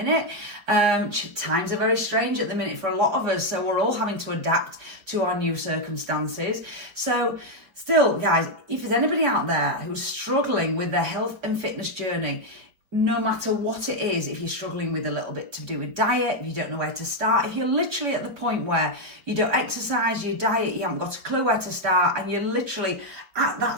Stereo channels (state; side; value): late; left; 5.1 ms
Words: Times are very strange at the minute for a lot of us, so we're all having to adapt to our new circumstances. So still, guys, if there's anybody out there who's struggling with their health and fitness journey, no matter what it is, if you're struggling with a little bit to do with diet, if you don't know where to start, if you're literally at the point where you don't exercise, your diet, you haven't got a clue where to start, and you're literally at